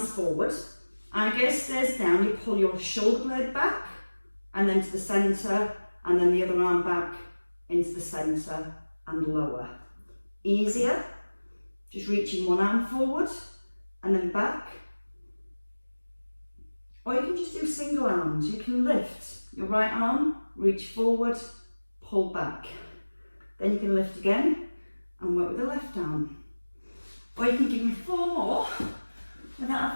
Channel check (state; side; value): inverted; both; correlation -1.00